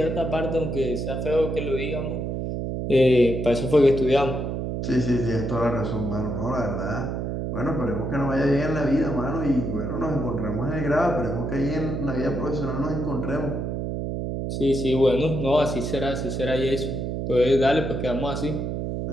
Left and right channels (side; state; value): right; noise; hum, 3 dB below the sound